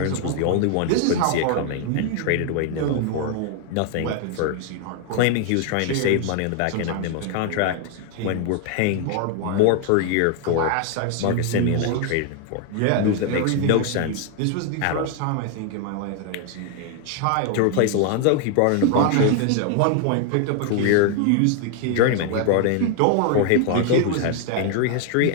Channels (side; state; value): both; different; correlation 0.00